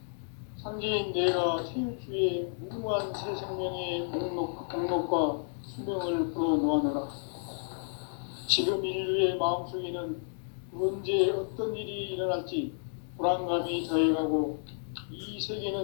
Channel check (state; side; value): silent; right; digital silence